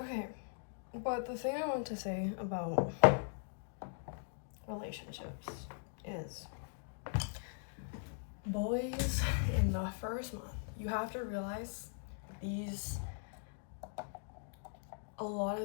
but the thing I want to say about relationships is boys in the first month, you have to realize a lot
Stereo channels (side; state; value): right; silent; digital silence